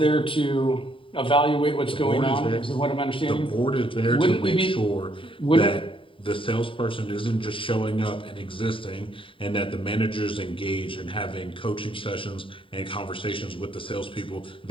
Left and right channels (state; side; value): late; right; 0.25 ms